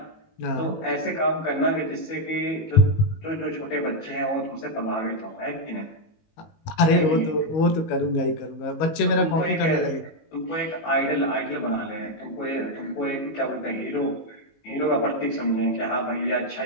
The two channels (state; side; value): late; right; 19 ms